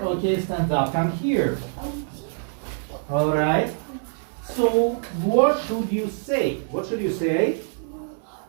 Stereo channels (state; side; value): silent; left; digital silence